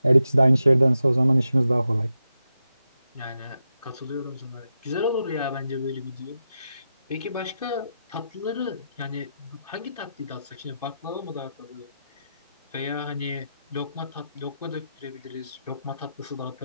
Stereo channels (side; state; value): both; inverted; correlation -0.87